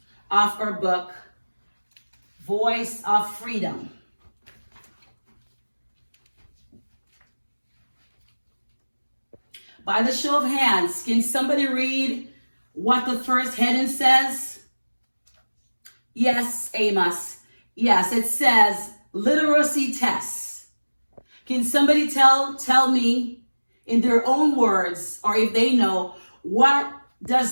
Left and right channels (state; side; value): inverted; both; correlation -1.00